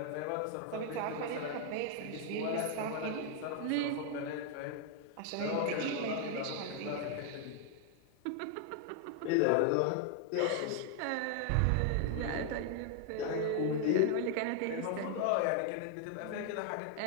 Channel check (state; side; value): different; both; correlation 0.00